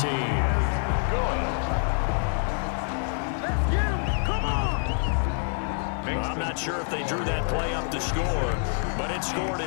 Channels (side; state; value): right; silent; 60 dB below the other